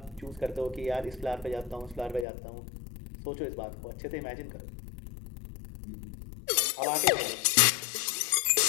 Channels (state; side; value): drops out; right; at 2.2 s